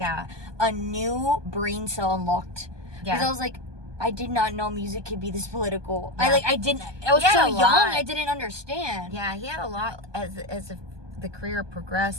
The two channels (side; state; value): left; late; 1.2 ms